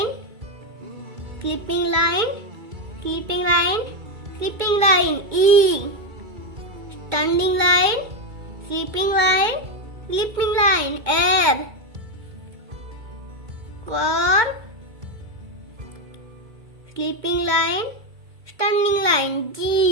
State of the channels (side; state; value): left; late; 2.2 ms